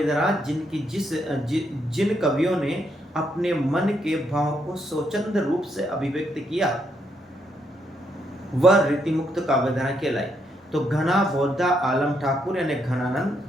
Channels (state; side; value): normal; both; correlation 0.76